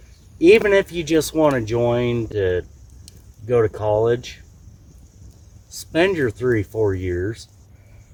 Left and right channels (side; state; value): both; identical; correlation 1.00